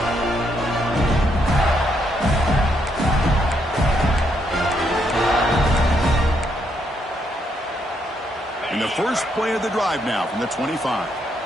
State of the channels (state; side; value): normal; both; correlation 0.76